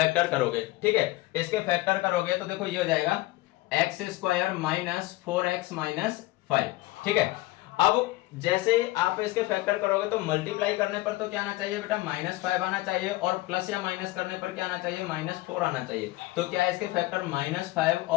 करोगे। ठीक है, इसके फैक्टर करोगे तो देखो ये हो जाएगा x स्क्वायर -4x -5। ठीक है, अब जैसे ही आप इसके फैक्टर करोगे तो मल्टीप्लाई करने पर तो क्या आना चाहिए बेटा? -5 आना चाहिए और प्लस या माइनस करने पर क्या आना चाहिए? -4 आना चाहिए। तो क्या है इसके फैक्टर? -5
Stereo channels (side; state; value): right; quieter; 19.3 dB